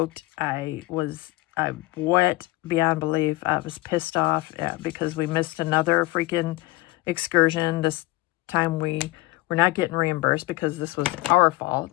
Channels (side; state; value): right; quieter; 20.2 dB